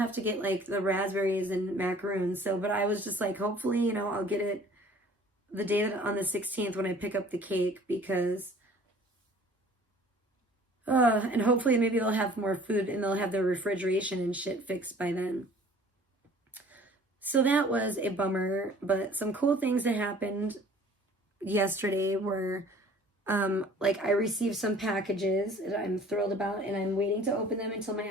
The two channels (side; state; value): both; normal; correlation 0.51